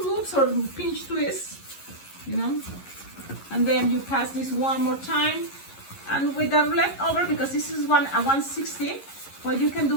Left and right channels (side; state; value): right; late; 11 ms